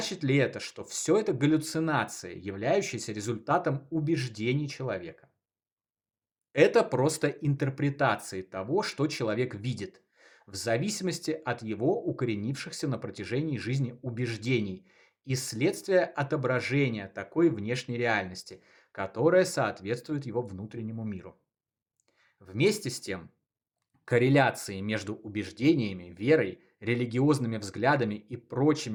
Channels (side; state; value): both; identical; correlation 1.00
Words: ли это, что все это галлюцинации, являющиеся результатом убеждений человека? Это просто интерпретации того, что человек видит, в зависимости от его укоренившихся на протяжении жизни убеждений и следствие отображения такой внешней реальности, которая соответствует его внутреннему миру. Вместе с тем, корреляции между убеждениями, верой, религиозными взглядами и